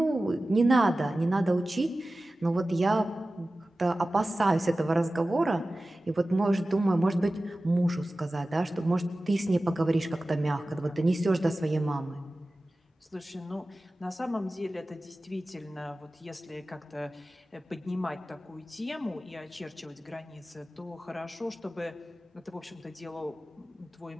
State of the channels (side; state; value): both; normal; correlation 0.96